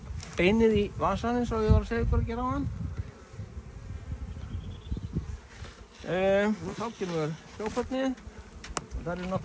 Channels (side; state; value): both; identical; correlation 1.00